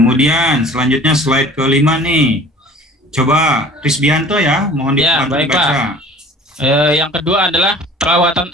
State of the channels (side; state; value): both; normal; correlation 0.46